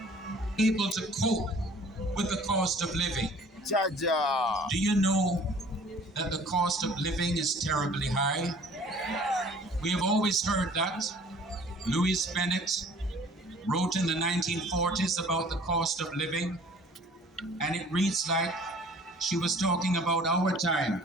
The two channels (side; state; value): both; normal; correlation 0.51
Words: able to cope with the cost of living. Do you know that the cost of living is terribly high? We have always heard that. Louise Bennett wrote in the 1940s about the cost of living, and it reads like she was talking about our time.